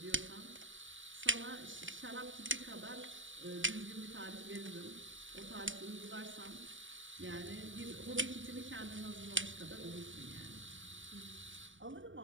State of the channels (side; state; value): left; late; 0.56 ms